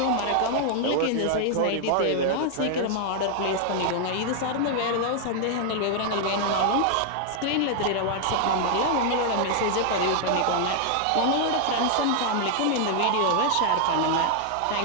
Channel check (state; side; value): different; both; correlation 0.00